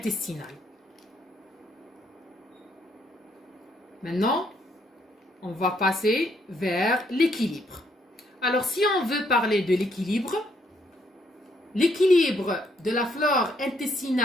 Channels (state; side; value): normal; both; correlation 0.71